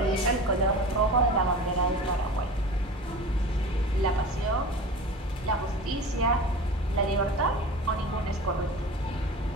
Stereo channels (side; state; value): both; normal; correlation 0.35